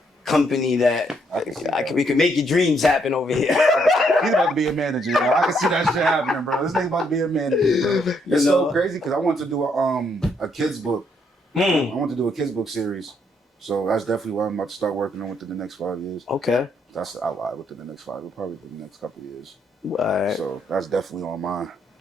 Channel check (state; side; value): normal; both; correlation 0.73